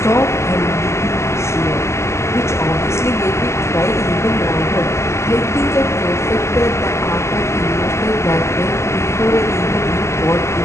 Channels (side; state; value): right; late; 0.13 ms